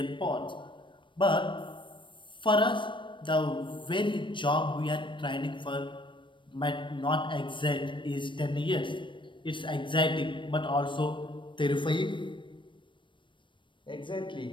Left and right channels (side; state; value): right; late; 0.24 ms